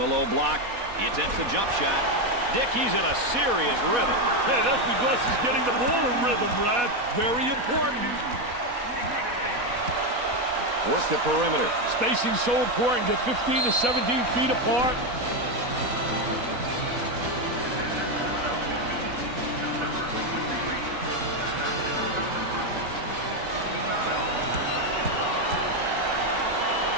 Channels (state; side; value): late; left; 4.1 ms